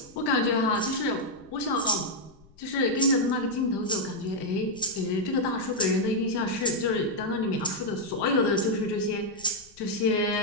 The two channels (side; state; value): left; noise; rumble, 27 dB below the sound